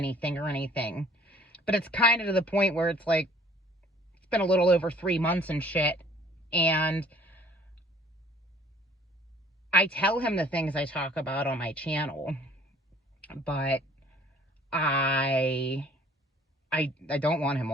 or anything, but it's kind of to the point where it's like, it's been a little over 3 months and shit, and I tell him the things I talk about on my channel, but I don't want him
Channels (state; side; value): normal; both; correlation 0.56